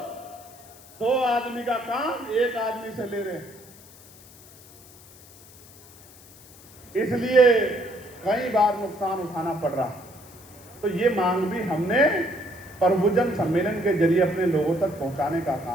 2 आदमी का काम 1 आदमी से ले रहे हैं, इसलिए कई बार नुकसान उठाना पड़ रहा। तो ये मांग भी हमने प्रभुजन सम्मेलन के जरिए अपने लोगों तक पहुंचाने का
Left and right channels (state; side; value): noise; left; hiss, 22 dB below the sound